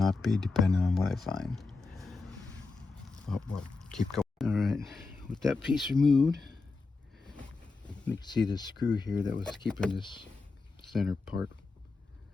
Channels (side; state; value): right; quieter; 3.9 dB